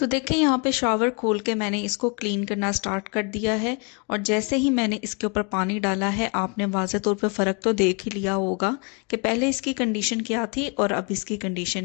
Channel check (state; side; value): quieter; right; 34.4 dB